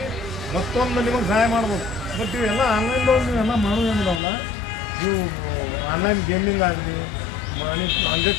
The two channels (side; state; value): right; drops out; at 4.2 s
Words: ಮತ್ತೊಂದು ನಿಮಗೆ ಸಹಾಯ ಮಾಡ್ಬೋದು. ಬಟ್ ಇವೆಲ್ಲ ಆನ್ಲೈನ್ದವ್ರು ನೀವೆಲ್ಲ ಮಾಡೋದೇನಿದಾವಲ್ಲ, ನೀವು ಆನ್ಲೈನ್ ಗೇಮಿಂಗ್ ಆಗಲಿ ಮನಿ